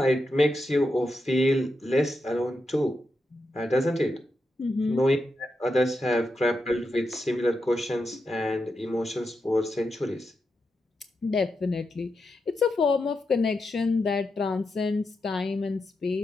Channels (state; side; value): normal; both; correlation 0.86